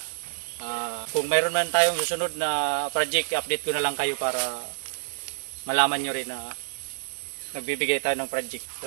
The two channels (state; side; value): silent; left; digital silence